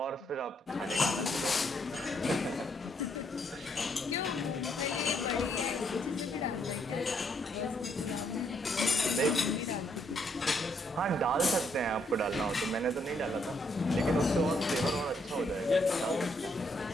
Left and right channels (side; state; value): both; normal; correlation 0.73